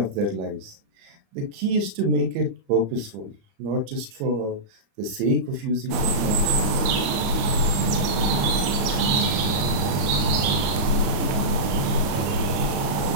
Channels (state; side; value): late; left; 30 ms